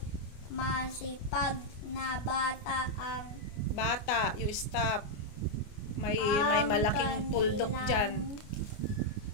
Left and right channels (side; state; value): right; late; 29 ms